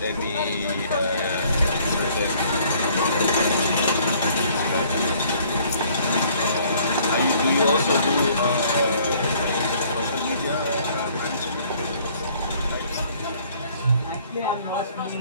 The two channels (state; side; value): inverted; both; correlation -0.59